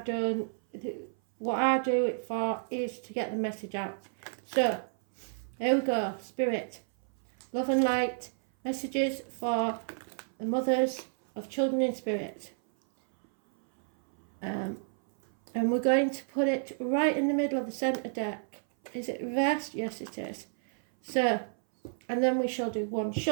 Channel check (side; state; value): left; silent; 57 dB below the other